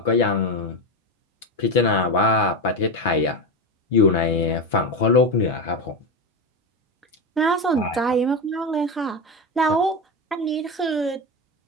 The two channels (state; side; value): normal; both; correlation 0.16